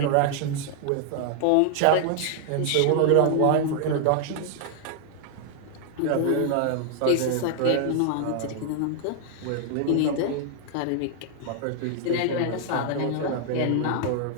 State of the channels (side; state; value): both; different; correlation 0.00